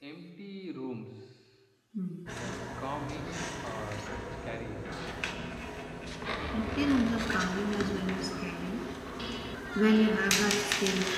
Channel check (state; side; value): identical; both; correlation 1.00